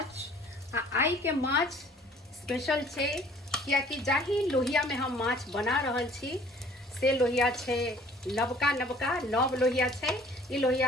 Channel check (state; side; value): normal; both; correlation 0.54